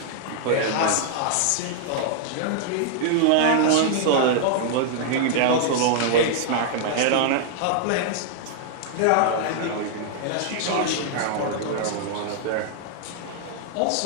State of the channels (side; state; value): both; different; correlation -0.01